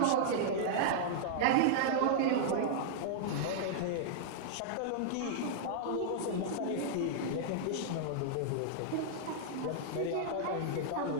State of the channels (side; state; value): both; different; correlation -0.02